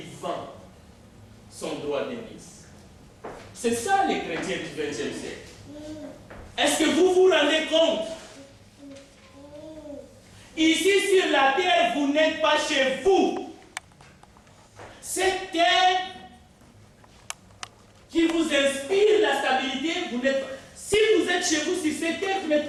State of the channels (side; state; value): both; identical; correlation 1.00